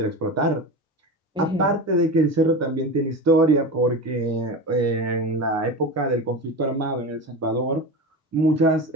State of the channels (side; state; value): both; normal; correlation 0.26